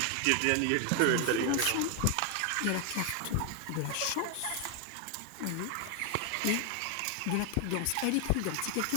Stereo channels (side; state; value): both; different; correlation 0.01